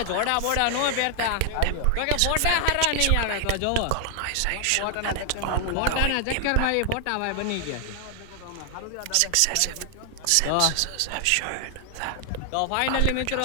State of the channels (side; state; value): both; different; correlation 0.00